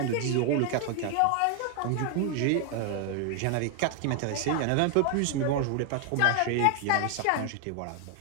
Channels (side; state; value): both; different; correlation 0.01